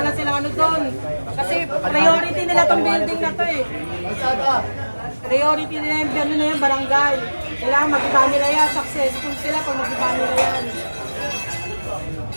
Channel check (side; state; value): both; inverted; correlation -1.00